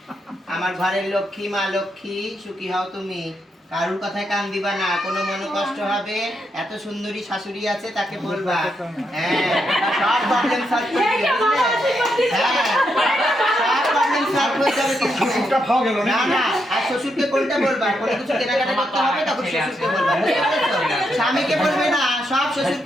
আমার ঘরের লক্ষ্মী, মা লক্ষ্মী, সুখী হও তুমি। কারুর কথায় কান দিবা না, কোনো মনে কষ্ট হবে, এত সুন্দরী শাশুড়ি আছে তাকে বলবা। হ্যাঁ, সব প্রবলেম সলভ করে দিবে, বুঝলে? হ্যাঁ, সব প্রবলেম সলভ হয়ে যাবে কিন্তু। না না, আর শ্বশুরকে কোনটা বলবা? কোনো কিছু কেনাকাটা করতে হবে তখন শ্বশুরকে বলবা, বুঝতে পেরেছো? স্বামীকে বলবে না, সব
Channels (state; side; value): normal; both; correlation 0.81